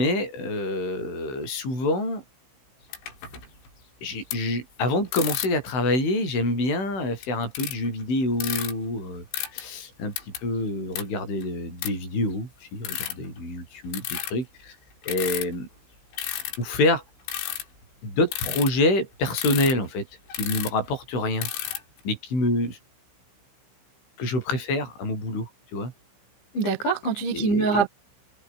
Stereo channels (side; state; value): right; late; 16 ms